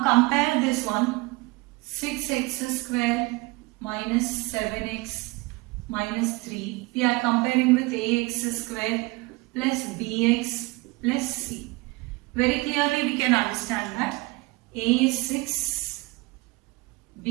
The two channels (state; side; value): quieter; left; 23.9 dB